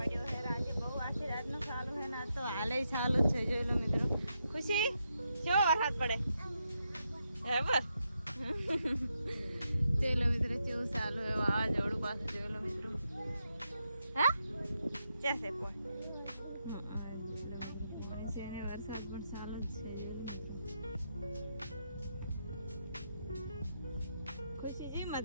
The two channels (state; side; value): inverted; both; correlation -0.83